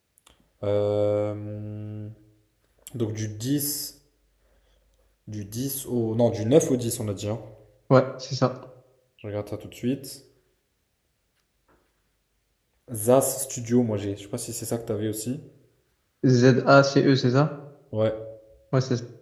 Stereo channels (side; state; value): both; identical; correlation 1.00